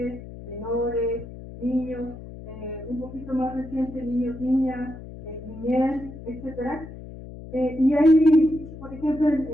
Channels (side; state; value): left; noise; hum, 14 dB below the sound